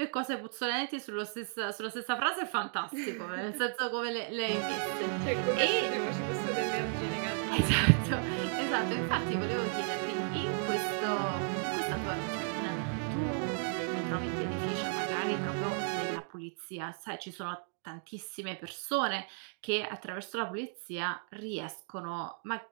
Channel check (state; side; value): silent; left; 55 dB below the other